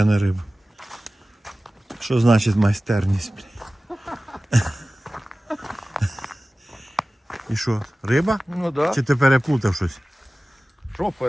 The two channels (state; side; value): normal; both; correlation 0.97